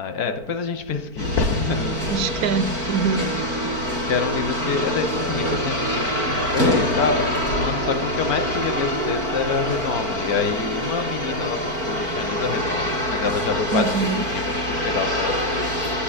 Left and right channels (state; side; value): late; left; 4.5 ms